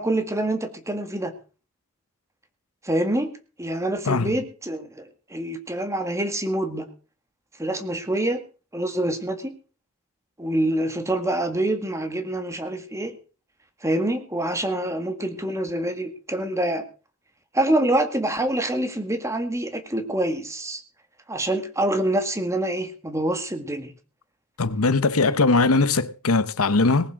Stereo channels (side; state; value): both; normal; correlation 0.48